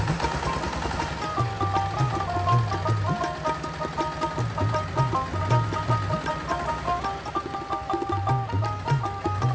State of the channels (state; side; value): identical; both; correlation 1.00